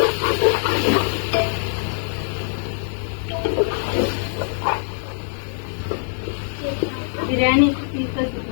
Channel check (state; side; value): silent; right; digital silence